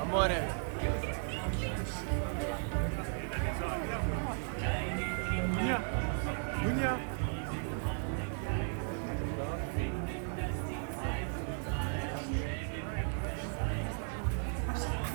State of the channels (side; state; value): left; silent; 54 dB below the other